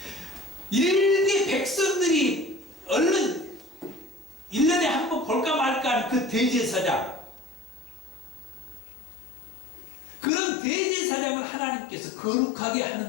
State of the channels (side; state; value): right; drops out; at 8.8 s